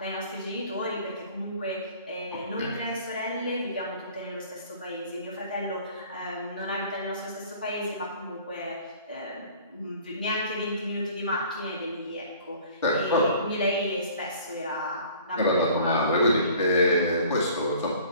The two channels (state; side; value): inverted; both; correlation -0.49